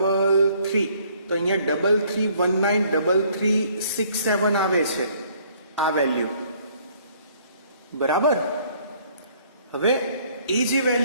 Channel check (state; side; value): inverted; both; correlation -0.61